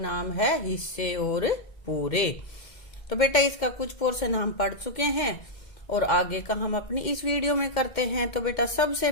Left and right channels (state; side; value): late; right; 2.1 ms